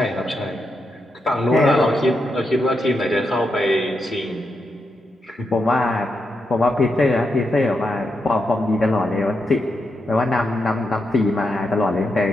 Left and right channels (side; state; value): both; normal; correlation 0.84